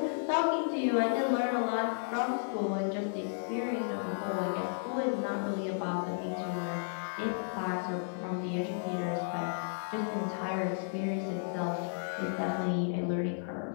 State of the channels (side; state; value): right; silent; 56 dB below the other